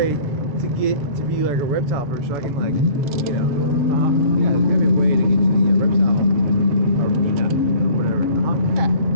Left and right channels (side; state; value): left; late; 7.4 ms